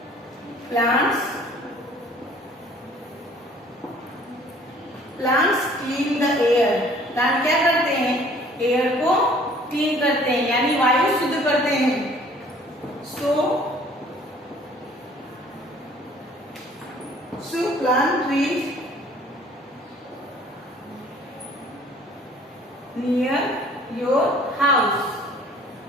plants clean the air. Plant क्या करते हैं, एयर को क्लीन करते हैं यानी वायु शुद्ध करते हैं. So plant trees near your house.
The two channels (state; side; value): normal; both; correlation 0.54